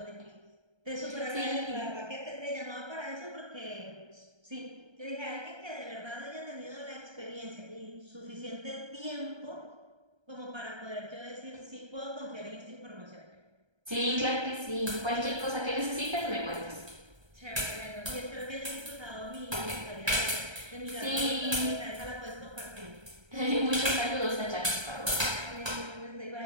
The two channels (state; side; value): late; left; 1.3 ms